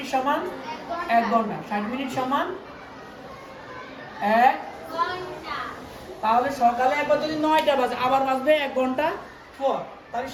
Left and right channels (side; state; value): both; identical; correlation 1.00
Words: সমান 1 ঘন্টা, 60 মিনিট সমান 1 ঘন্টা। তাহলে সকালে একবার যদি 9টা বাজে আবার বাজবে 1 ঘন্টা পর, তাহলে